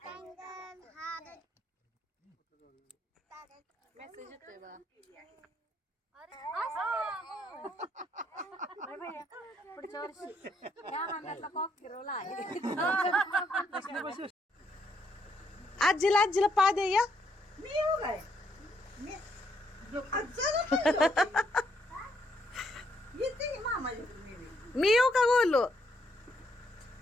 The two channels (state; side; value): normal; both; correlation 0.73